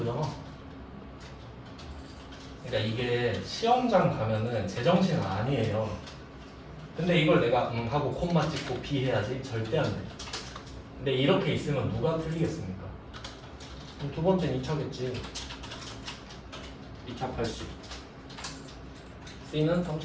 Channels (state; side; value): identical; both; correlation 1.00